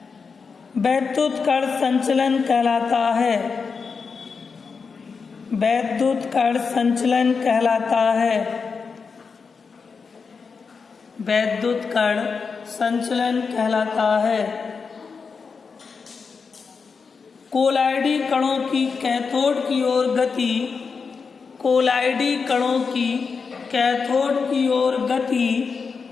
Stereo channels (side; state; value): right; quieter; 5.3 dB